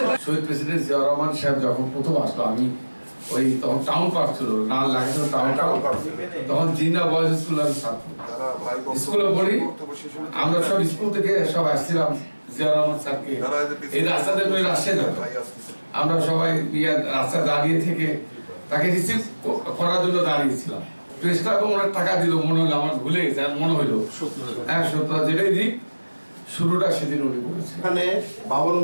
শহীদ প্রেসিডেন্ট জিয়াউর রহমান সাহেব যখন প্রথম আসলো, আমি ওই তখন টাউন পার্ক ছিল না, লাগানো টাউন তখন জিন্না বয়েজ স্কুলের ছাত্র, স্কুলে পড়ি আমরা সব স্কুল থেকে সব আসছিলাম জিয়াউর রহমান স্যারকে এই রাস্তাতে রাস্তায় যেত, আমরা সবাই রাস্তায় দাঁড়িয়ে থেকে তাকে রিসিভ করার জন্য দাঁড়িয়েছিলাম। প্রেস ক্লাবে ওনার টাকা দিল মনে হলো, আমার ভুলে গেছে, মনে হলো হ্যাঁ সত্য, যেটাই দিক শুরুটা সেদিন উনি করেছেন। এখানে বাবন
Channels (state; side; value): inverted; both; correlation -1.00